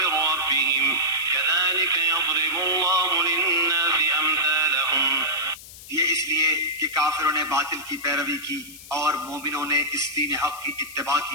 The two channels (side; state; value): left; noise; hiss, 16 dB below the sound